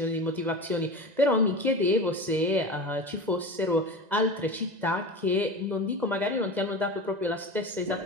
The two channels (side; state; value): left; late; 2.0 ms